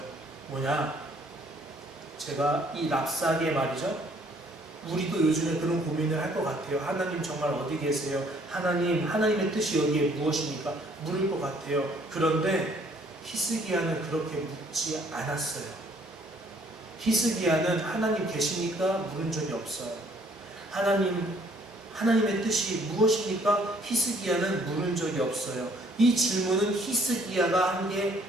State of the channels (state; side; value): normal; both; correlation 0.62